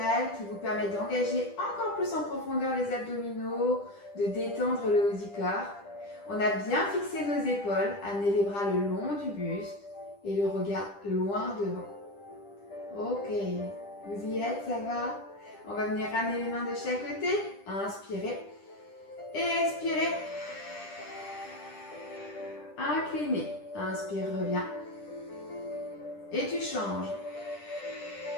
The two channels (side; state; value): right; late; 10 ms